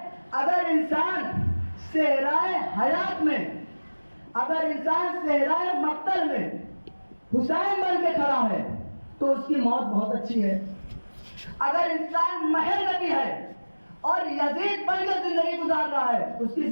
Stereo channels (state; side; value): inverted; both; correlation -1.00